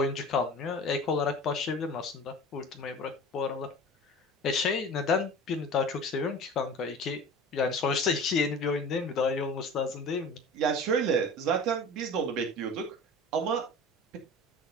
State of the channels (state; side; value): normal; both; correlation 0.38